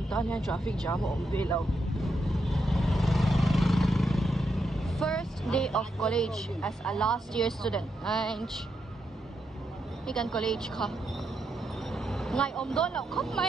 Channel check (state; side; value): normal; both; correlation 0.82